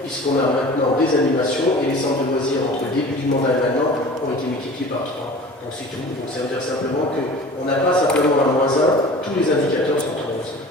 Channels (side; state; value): both; normal; correlation 0.41